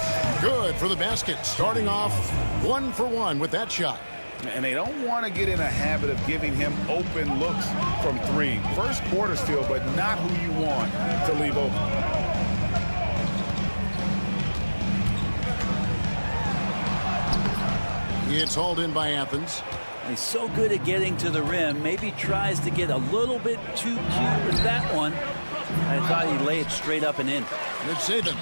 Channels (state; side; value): inverted; both; correlation -1.00